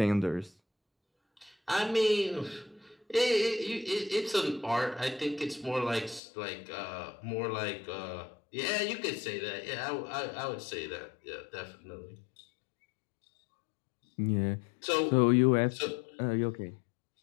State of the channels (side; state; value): right; drops out; at 6.2 s